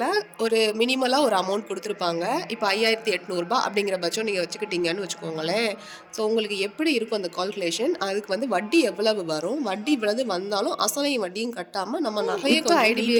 ஒரு மினிமலாக ஒரு அமௌண்ட் கொடுத்துருப்பாங்க. இப்போ 5800 அப்படிங்கிற பட்சம் நீங்கள் வச்சுக்கிட்டீங்கன்னு வச்சுக்கோங்களேன். ஸோ உங்களுக்கு எப்படி இருக்கும் அந்த கால்குலேஷன், அதுக்கு வந்து வட்டி எவ்வளவு வரும், வட்டி இவ்வளவு வந்தாலும் அசலையும் வட்டியும் கட்டாமல் நம்ம நகையை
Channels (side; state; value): both; identical; correlation 1.00